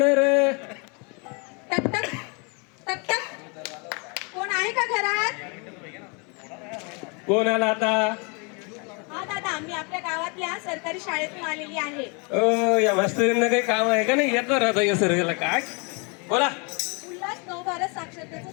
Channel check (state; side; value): quieter; right; 33.0 dB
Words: रे. टक टक टक टक. कोण आहे का घरात? कोण आला आता? हा दादा, मी आपल्या गावातल्या सरकारी शाळेतून आलेली आहे. ओ या मास्तरींना काही काम आहे का नाही? येतो राहता या सर्वेला. काय बोला? उल्हास 9-12 साक्षरतेचं